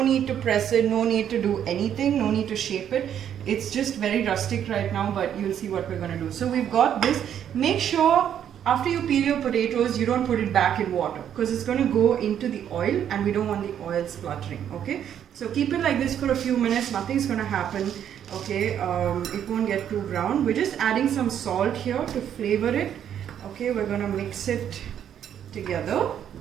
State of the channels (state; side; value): quieter; left; 9.6 dB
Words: need to press it, no need to do anything, no need to shape it. It's just very rustic right now, but you'll see what we're going to do. So we've got this. Make sure after you peel your potatoes, you don't put it back in water, because it's going to go into the oil and we don't want the oil spluttering, okay. So keep it like this for a few minutes, nothing's going to happen, okay. It won't get too brown. We're just adding some salt here to flavor it, okay. We're going to mix it together